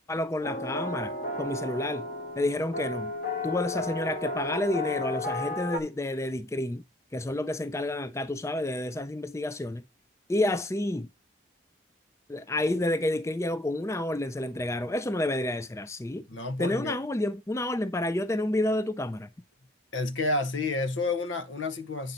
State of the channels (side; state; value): both; normal; correlation 0.56